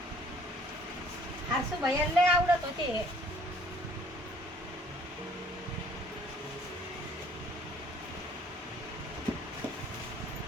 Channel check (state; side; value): normal; both; correlation 0.58